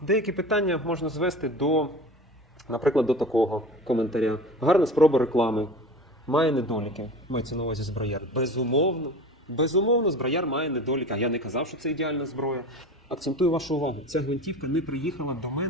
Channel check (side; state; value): both; normal; correlation 0.35